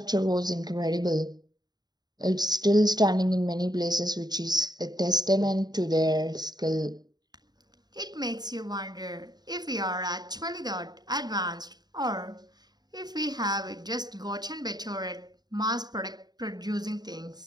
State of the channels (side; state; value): left; late; 0.20 ms